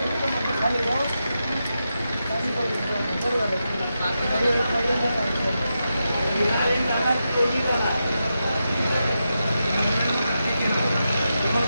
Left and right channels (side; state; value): both; inverted; correlation -0.88